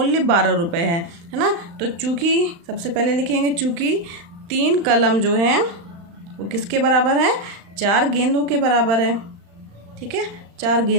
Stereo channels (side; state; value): left; late; 35 ms